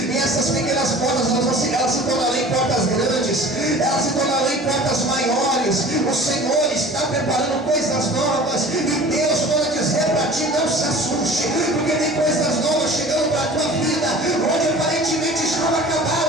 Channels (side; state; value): both; normal; correlation 0.43